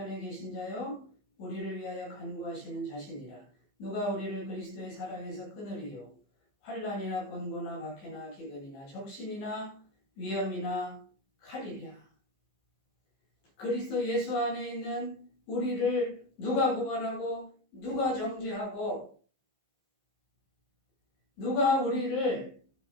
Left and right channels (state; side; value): late; right; 15 ms